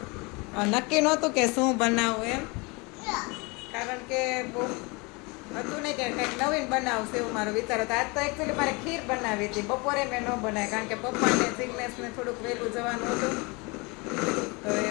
નક્કી નહોતું કે શું બનાવવું એમ, કારણ કે બહુ હતું નહીં કે કંઈક નવીન બનાવશે એવું મારો વિચાર હતો. આજ તો એકચ્યુઅલી મારે ખીર બનાવી હતી. બપોરે મેં ન બનાવી કારણ કે પપ્પાને જિગ્નેશને થોડુંક વહેલું જવાનું હતું. તો એ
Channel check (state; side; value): quieter; right; 27.9 dB